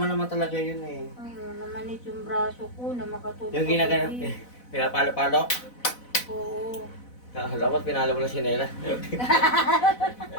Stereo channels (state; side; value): late; right; 4.0 ms